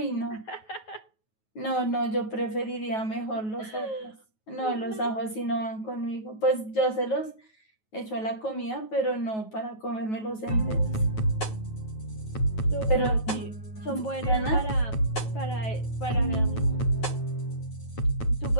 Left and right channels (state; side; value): late; right; 9.3 ms